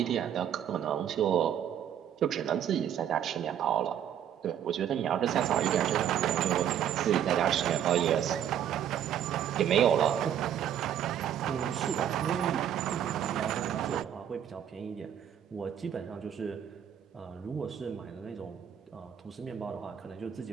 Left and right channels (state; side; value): quieter; left; 9.7 dB